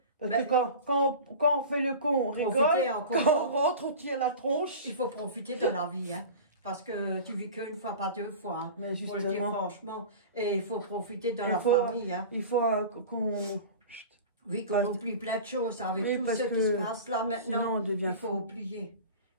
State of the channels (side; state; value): both; inverted; correlation -0.35